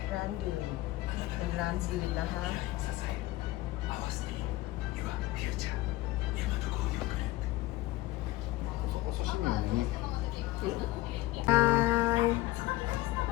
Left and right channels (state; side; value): quieter; right; 17.8 dB